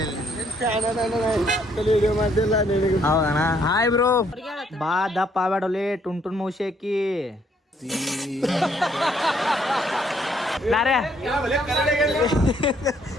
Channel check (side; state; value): both; normal; correlation 0.68